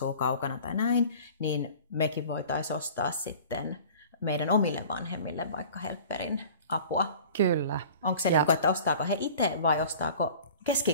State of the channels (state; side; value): inverted; both; correlation -0.43